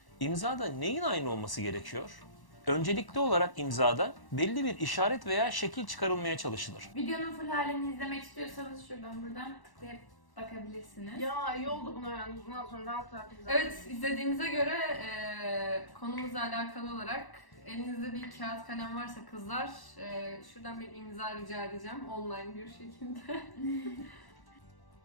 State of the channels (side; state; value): right; late; 1.1 ms